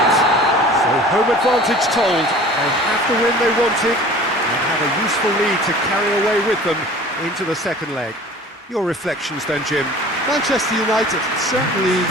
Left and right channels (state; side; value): normal; both; correlation 0.44